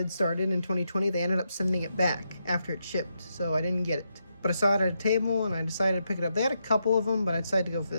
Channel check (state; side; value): inverted; both; correlation -0.82